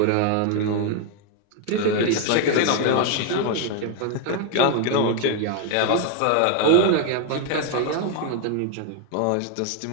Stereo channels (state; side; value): different; both; correlation 0.01